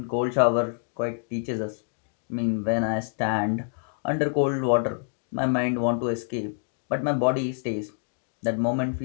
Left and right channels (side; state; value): right; silent; digital silence